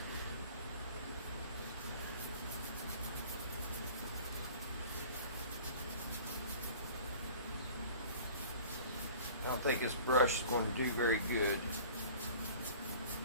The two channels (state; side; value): inverted; both; correlation -0.45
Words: I don't think this brush is going to do very good.